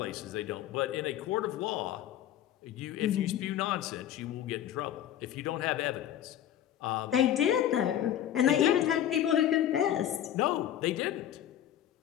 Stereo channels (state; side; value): quieter; right; 11.1 dB